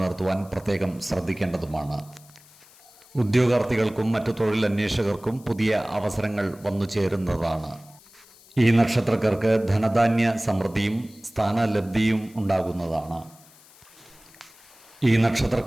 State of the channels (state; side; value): noise; left; hiss, 25 dB below the sound